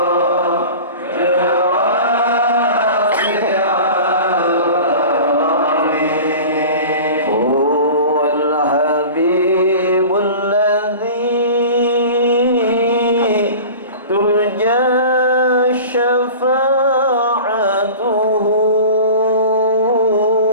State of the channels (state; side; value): inverted; both; correlation -0.37